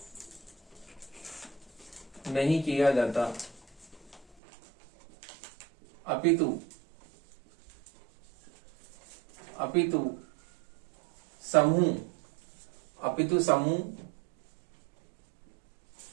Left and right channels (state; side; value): drops out; left; at 4.2 s